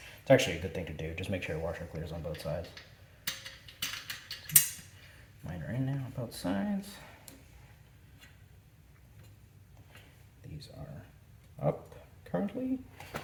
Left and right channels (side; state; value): both; identical; correlation 1.00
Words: actually a good thing to do. Just make sure your washer clears on both sides. Mine are in now on both sides. These are up currently,